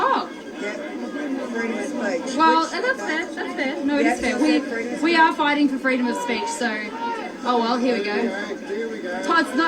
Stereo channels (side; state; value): both; identical; correlation 1.00